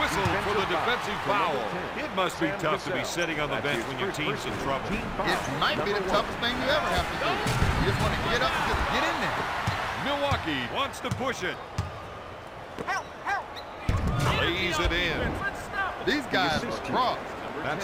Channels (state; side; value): identical; both; correlation 1.00